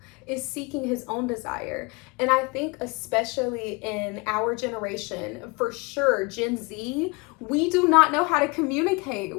is seeking his own desire. And I think especially in our generation, for sure, Gen Z, we do not know how to communicate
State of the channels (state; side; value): quieter; right; 27.7 dB